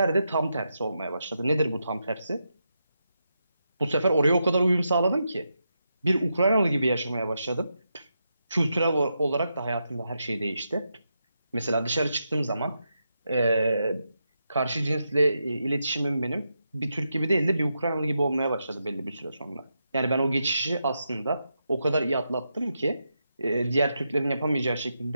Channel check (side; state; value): both; inverted; correlation -0.85